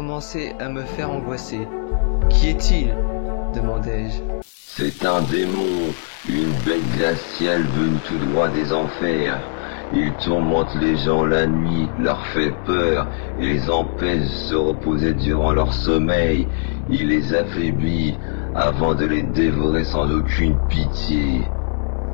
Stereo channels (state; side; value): silent; right; digital silence